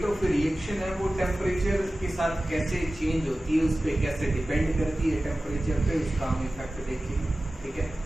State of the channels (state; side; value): normal; both; correlation 0.96